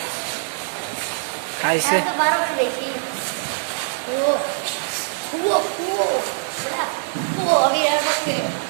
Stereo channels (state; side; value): silent; left; digital silence